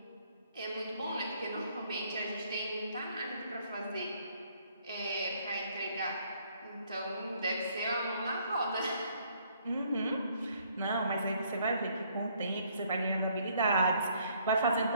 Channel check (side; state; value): both; inverted; correlation -0.65